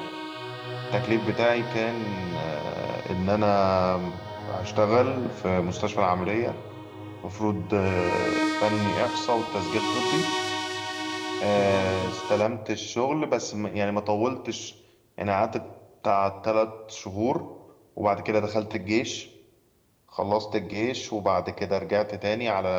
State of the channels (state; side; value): identical; both; correlation 1.00